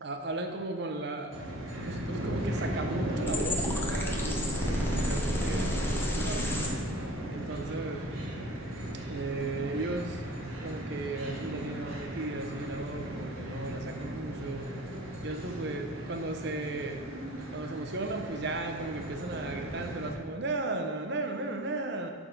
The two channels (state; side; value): normal; both; correlation 0.43